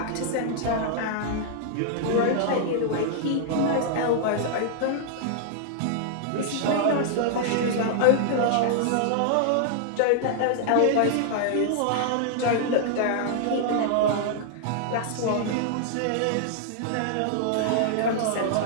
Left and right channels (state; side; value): different; both; correlation -0.01